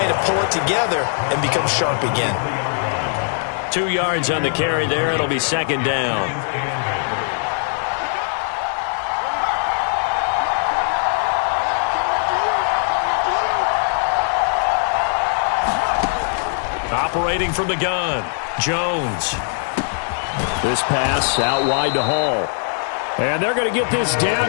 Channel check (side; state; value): right; silent; 66 dB below the other